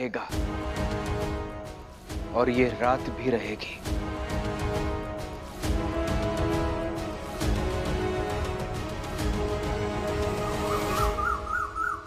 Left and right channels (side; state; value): both; identical; correlation 1.00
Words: और ये रात भी रहेगी।